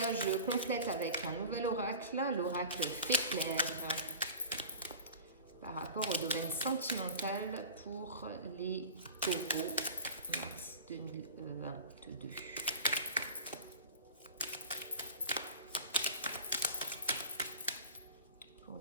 je complète avec un nouvel oracle, l'oracle Féclair, par rapport au domaine sentimental pour les taureaux, mars 2022. Pour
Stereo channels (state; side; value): inverted; both; correlation -0.34